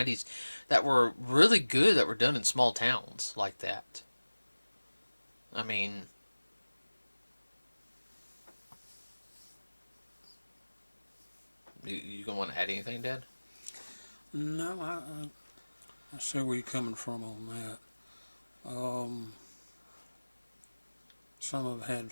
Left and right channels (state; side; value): inverted; both; correlation -1.00